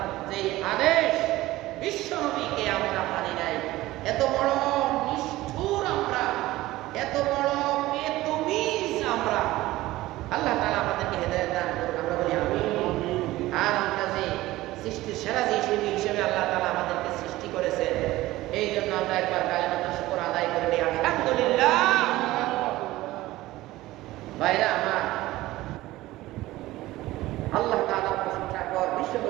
যে আদেশ বিশ্বনবীকে আমরা মানি নাই এত বড় নিষ্ঠুর আমরা এত বড় বেতমিজ আমরা আল্লাহ তাআলা আমাদেরকে হেদায়েত দান করুন আমরা বলি আমিন আর আমরা যে সৃষ্টির সেরা হিসেবে আল্লাহ তাআলা আমাদেরকে সৃষ্টি করেছেন এই জন্য আমরা একবার কালিমাতুল শুকর আদায় করে নিই আলহামদুলিল্লাহ ভাইরা আমার আল্লাহ তাআলার প্রশংসা কর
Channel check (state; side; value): quieter; left; 17.3 dB